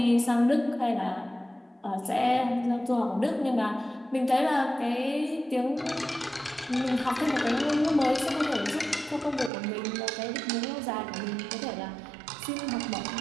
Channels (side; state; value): left; drops out; at 9.5 s